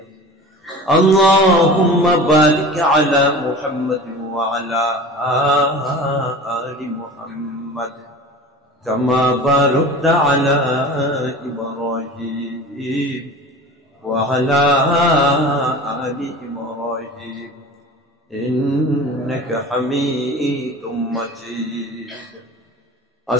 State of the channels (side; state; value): both; normal; correlation 0.37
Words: আল্লাহুম্মা বারিক আলা মুহাম্মাদ ওয়া আলা আলি মুহাম্মাদ كما باركت على إبراهيم وعلى آل إبراهيم إنك حميد مجيد.